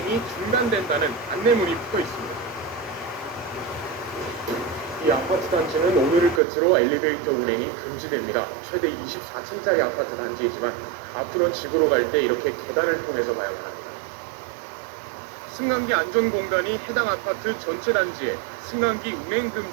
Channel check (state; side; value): drops out; left; at 6.4 s